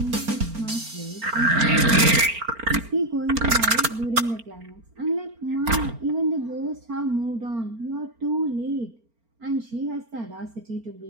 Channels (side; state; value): left; late; 4.4 ms